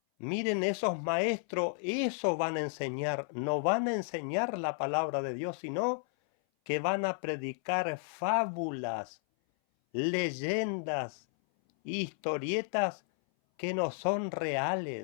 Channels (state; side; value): silent; right; 56 dB below the other